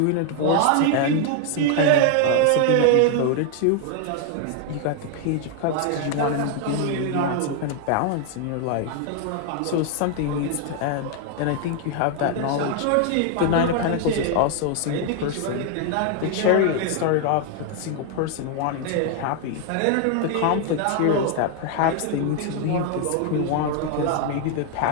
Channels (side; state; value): both; different; correlation 0.00